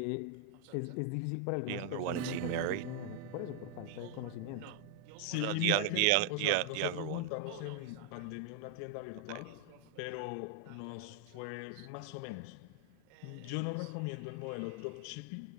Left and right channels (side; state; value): both; different; correlation 0.00